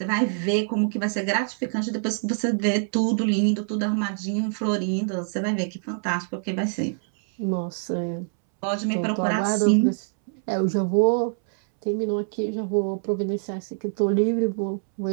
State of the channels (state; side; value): silent; left; 62 dB below the other